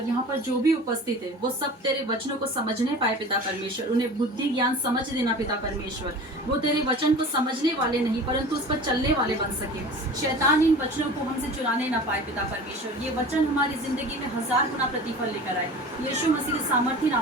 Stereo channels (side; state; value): both; normal; correlation 0.38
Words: यहाँ पर जो भी उपस्थित है वो सब तेरे वचनों को समझने पाए पिता परमेश्वर। उन्हें बुद्धि ज्ञान समझ देना पिता परमेश्वर। वो तेरे वचन को समझने वाले नहीं परंतु उस पर चलने वाले बन सके। शैतान इन वचनों को हमसे चुराने ना पाए पिता परमेश्वर। ये वचन हमारी जिंदगी में 1000 गुना प्रतिफल लेकर आए। यीशु मसीह के सामर्थी